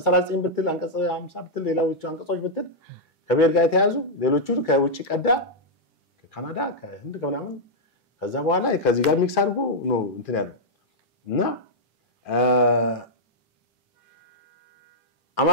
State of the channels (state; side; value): normal; both; correlation -0.06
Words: 39 ብትል አንቀጽ 50 ብትል ሌላዎቹ አንቀጾች ብትል ከብሔር ጋር የተያዙ ሌሎቹ ከውጪ ቀዳ ከካናዳ ከህንድ ከምናምን ከዛ በኋላ ከዚህ ጋር ሚክስ አድርጎ ነው እንትን ያለው እና